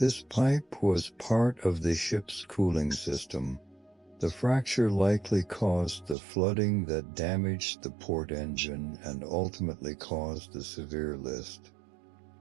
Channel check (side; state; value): left; drops out; at 6.2 s